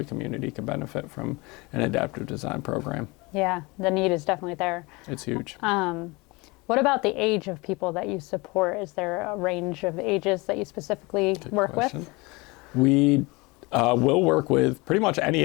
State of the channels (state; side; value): quieter; right; 25.2 dB